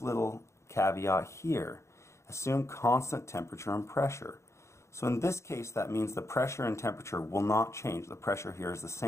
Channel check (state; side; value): late; right; 0.14 ms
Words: caveat here. Assume constant temperature and pressure. So in this case, that means the pressure and temperature will not change. The pressure here is the